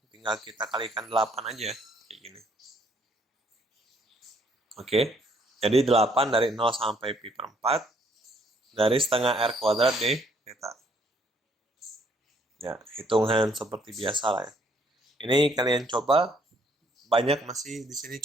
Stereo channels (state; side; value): normal; both; correlation 0.66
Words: tinggal kita kalikan 8 aja. Kayak gini. Oke, jadi 8 dari 0 sampai pi per 4 dari setengah R kuadrat D theta. Ya, hitungan seperti biasa lah ya. Ini kalian coba, banyak masih di sini